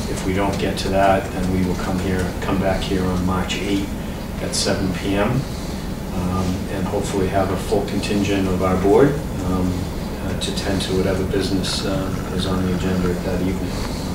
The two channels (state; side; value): identical; both; correlation 1.00